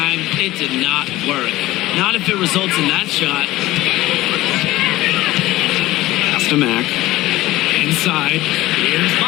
it did not work. Not if it results in that shot. Pass to Mack. Inside. Here's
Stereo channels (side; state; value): right; quieter; 17.2 dB